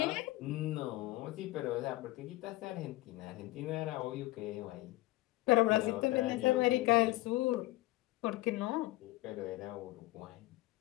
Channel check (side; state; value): right; quieter; 18.8 dB